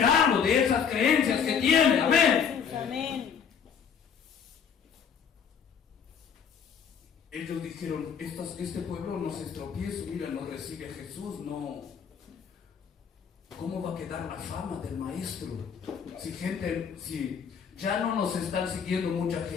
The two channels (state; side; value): quieter; right; 7.1 dB